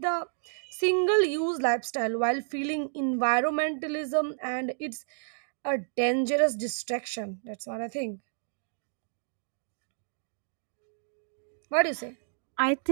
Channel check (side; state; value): left; silent; digital silence